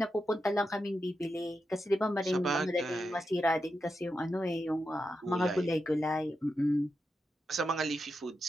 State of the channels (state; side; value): normal; both; correlation 0.87